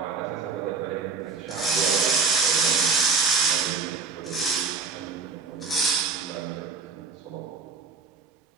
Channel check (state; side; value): quieter; left; 4.9 dB